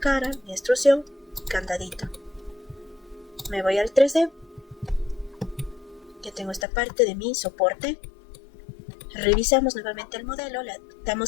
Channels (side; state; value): right; drops out; at 6.7 s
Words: mi extrusión, candadito. Me voy al 3D. Ya tengo esta parte de mi soporte. Revisamos nuevamente el modelo, le